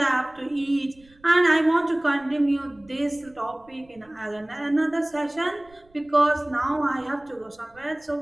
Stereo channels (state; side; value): noise; right; rumble, 30 dB below the sound